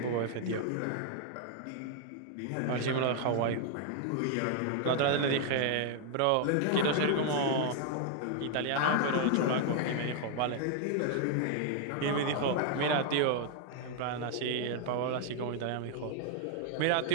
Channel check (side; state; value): both; different; correlation 0.00